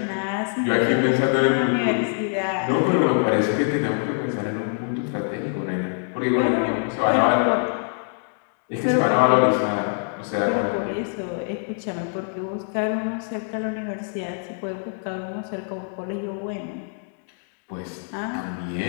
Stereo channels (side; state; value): right; silent; 62 dB below the other